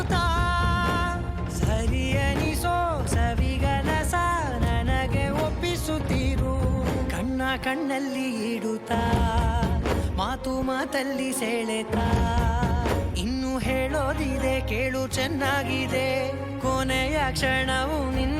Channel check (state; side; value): identical; both; correlation 1.00